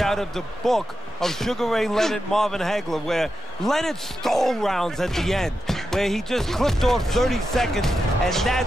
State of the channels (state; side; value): normal; both; correlation 0.88